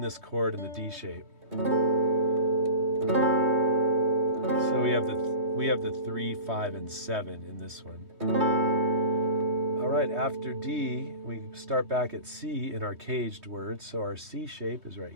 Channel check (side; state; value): left; late; 3.2 ms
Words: chord in the D shape. So we have the 3, 5, and 7 in this one. All right, after D, we start back at C in our caged words. So our C shape is right